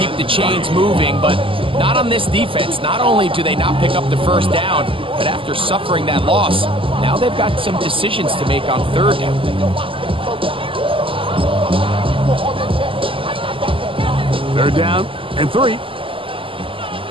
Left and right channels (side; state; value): left; late; 0.25 ms